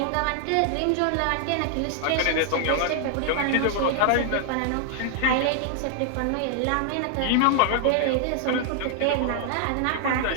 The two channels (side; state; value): both; different; correlation 0.00